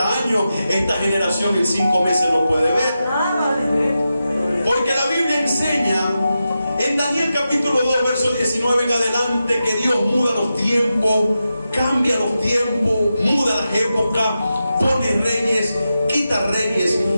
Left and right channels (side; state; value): both; inverted; correlation -0.90